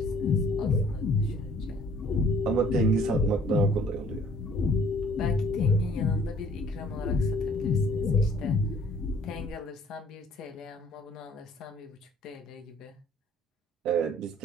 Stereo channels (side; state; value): both; normal; correlation 0.57